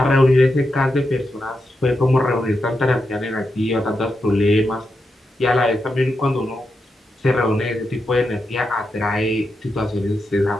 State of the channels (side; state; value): both; normal; correlation 0.86